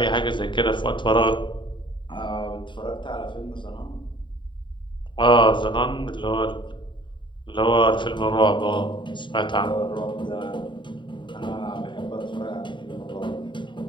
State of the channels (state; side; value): late; right; 0.23 ms